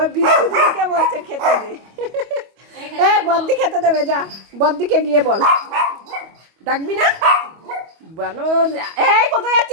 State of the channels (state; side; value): late; left; 25 ms